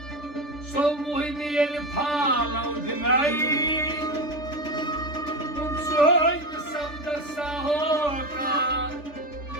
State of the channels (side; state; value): right; late; 3.4 ms